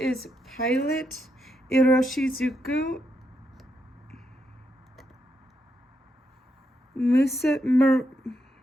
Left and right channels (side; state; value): both; normal; correlation 0.81